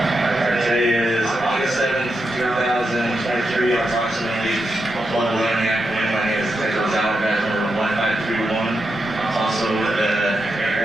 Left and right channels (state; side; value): normal; both; correlation 0.86